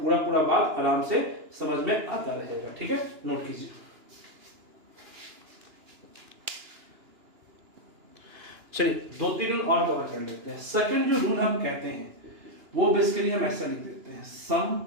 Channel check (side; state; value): left; late; 2.9 ms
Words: पूरा बात आराम से समझ में आता रहेगा। ठीक है, नोट कीजिए। चलिए 2-3 रूल और कवर कर लेते हैं। सेकंड जो रूल हम कहते हैं वो बेसिकली हम ऐसा लिख देते हैं, सम